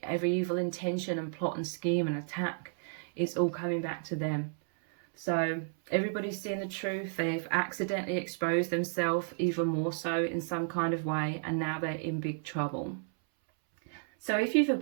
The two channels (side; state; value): left; silent; 56 dB below the other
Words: every evil intention and plot and scheme and attack, it's all coming back to them. So everybody's seeing the truth. They've accidentally exposed themselves even more so in some kind of way, and now they're in big trouble. So if you've